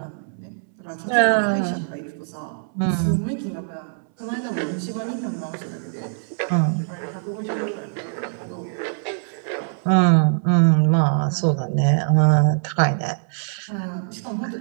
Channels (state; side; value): silent; left; 64 dB below the other